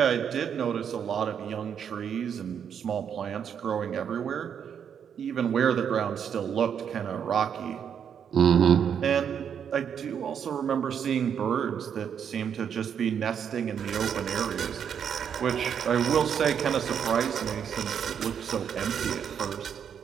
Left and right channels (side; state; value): left; quieter; 7.9 dB